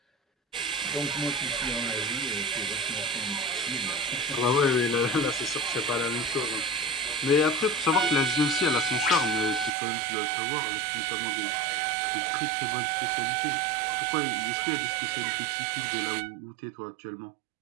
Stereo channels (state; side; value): drops out; left; at 9.7 s